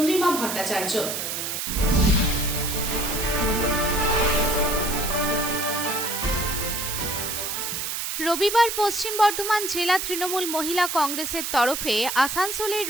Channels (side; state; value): right; noise; hiss, 3 dB below the sound